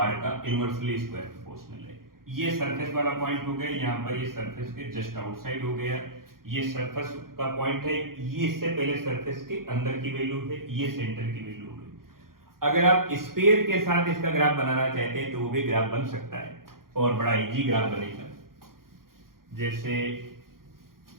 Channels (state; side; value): late; left; 0.92 ms